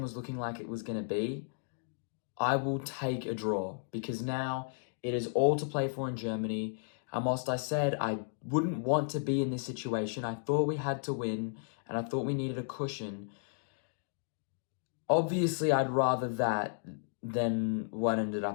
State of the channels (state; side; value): silent; right; digital silence